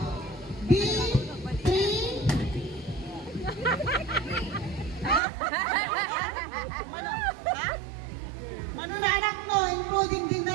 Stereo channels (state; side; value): drops out; left; at 5.2 s